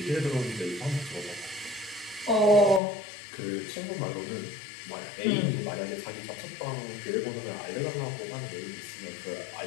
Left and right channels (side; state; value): right; drops out; at 2.8 s